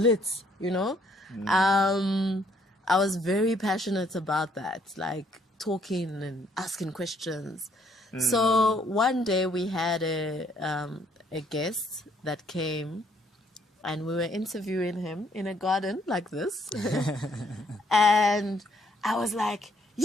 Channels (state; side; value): normal; both; correlation 0.67